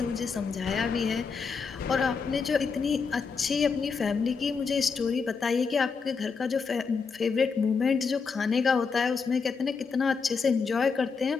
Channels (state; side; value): quieter; right; 5.3 dB